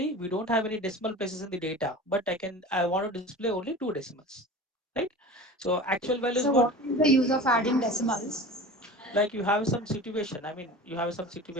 we don't have any decimal places in the data, but I want to display only two decimals, right? So actual value is So, what? what is the use of adding decimals? Like you have some situation, I mean you have some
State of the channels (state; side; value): normal; both; correlation 0.36